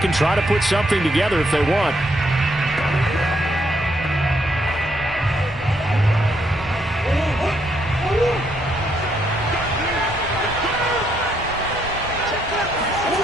try to put something together if they want.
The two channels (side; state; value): both; normal; correlation 0.74